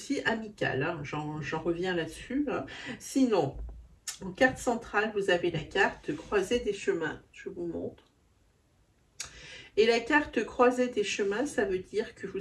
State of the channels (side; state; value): both; identical; correlation 1.00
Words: amical, hein, j'en reviens là-dessus. Hein. Sinon, en carte centrale, vous avez la carte croisée des chemins. Je vous montre. Et la carte croisée des chemins, ça veut dire que